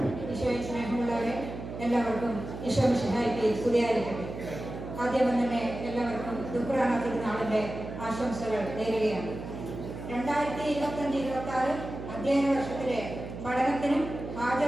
ഈശോയിൽ സ്നേഹമുള്ളവരെ, എല്ലാവർക്കും ഈശോ മിശിഹായ്ക്ക് സ്തുതിയായിരിക്കട്ടെ. ആദ്യം തന്നെ എല്ലാവർക്കും ദുഃഖറാന തിരുനാളിൻ്റെ ആശംസകൾ നേരുകയാണ്. 2025-26 അധ്യയന വർഷത്തിലെ പഠനത്തിനും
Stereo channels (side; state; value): right; noise; hum, 9 dB below the sound